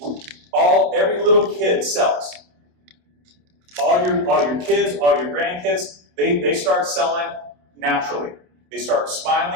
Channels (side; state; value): left; late; 28 ms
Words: Every little kid sells. All your kids, all your grandkids, they start selling naturally. They start